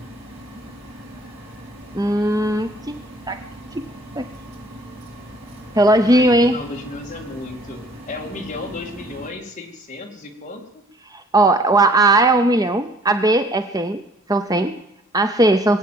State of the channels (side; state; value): both; normal; correlation 0.57